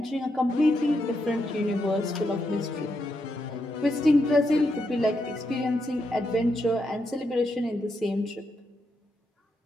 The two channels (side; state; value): both; normal; correlation 0.82